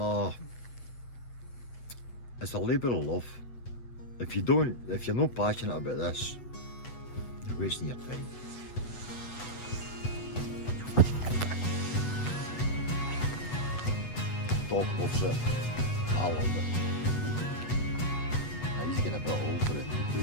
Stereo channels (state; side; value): late; right; 8.1 ms